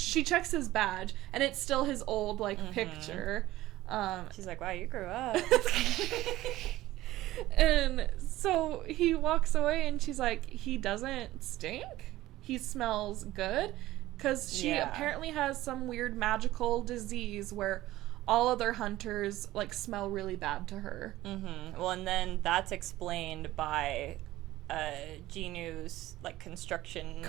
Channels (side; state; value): left; quieter; 16.1 dB